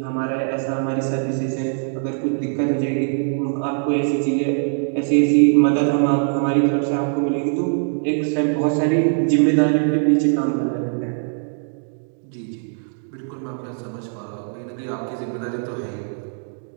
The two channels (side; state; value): left; silent; 63 dB below the other